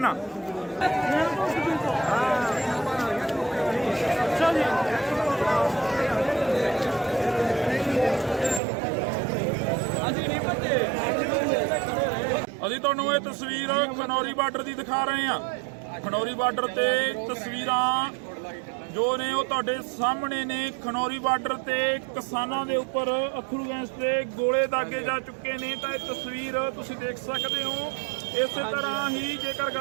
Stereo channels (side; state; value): left; drops out; at 8.6 s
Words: ਆ। ਅਸੀਂ ਤੁਹਾਨੂੰ ਇਹ ਤਸਵੀਰ ਖਨੌਰੀ ਬਾਰਡਰ ਦੀ ਦਿਖਾ ਰਹੇ ਹਾਂ। ਖਨੌਰੀ ਬਾਰਡਰ ਤੇ ਤਸਵੀਰਾਂ ਜੋ ਨੇ ਉਹ ਤੁਹਾਡੇ ਸਾਹਮਣੇ ਨੇ। ਖਨੌਰੀ ਬਾਰਡਰ ਤੇ ਕਿਸਾਨਾਂ ਦੇ ਉੱਪਰ ਅਥਰੂ ਗੈਸ ਦੇ ਗੋਲੇ ਦਾਗੇ ਜਾ ਚੁੱਕੇ ਨੇ। ਤਾਂ ਇਹ ਤਸਵੀਰ ਤੁਸੀਂ ਦੇਖ ਸਕਦੇ ਹੋ। ਇਸੇ ਤਰ੍ਹਾਂ ਹੀ ਜੇਕਰ